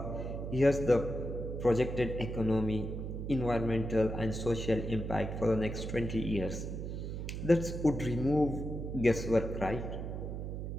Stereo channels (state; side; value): noise; right; hum, 5 dB below the sound